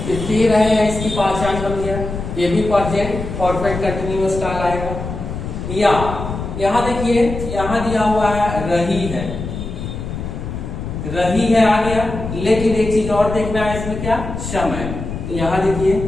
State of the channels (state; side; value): noise; left; rumble, 7 dB below the sound